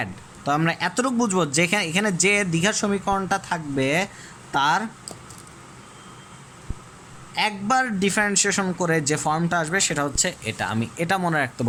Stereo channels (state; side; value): identical; both; correlation 1.00